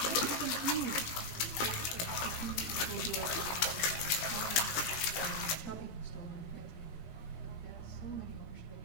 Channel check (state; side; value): late; right; 18 ms